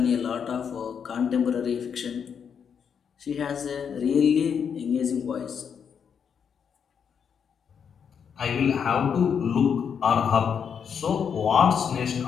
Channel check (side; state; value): right; quieter; 7.2 dB